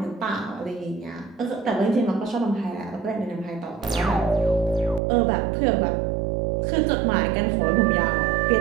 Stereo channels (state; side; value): drops out; left; at 5.0 s